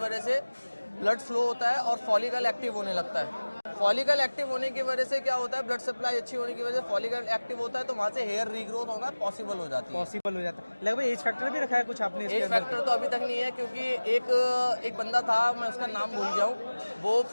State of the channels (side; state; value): both; inverted; correlation -1.00